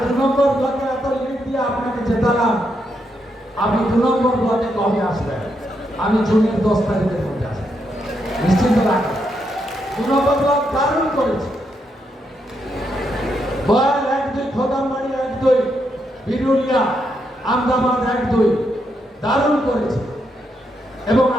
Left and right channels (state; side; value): normal; both; correlation 0.80